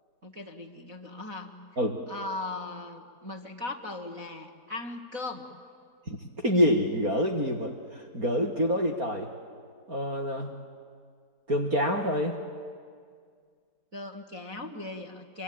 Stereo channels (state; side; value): late; left; 4.3 ms